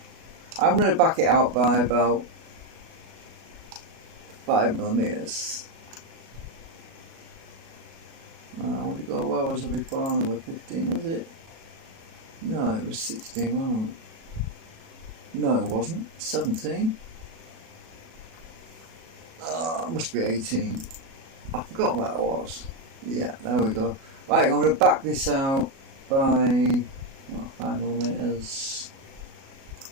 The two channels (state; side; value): late; left; 37 ms